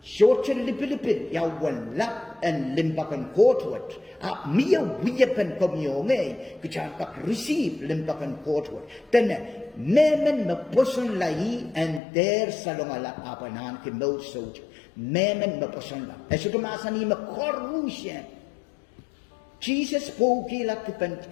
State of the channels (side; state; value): right; drops out; at 12.0 s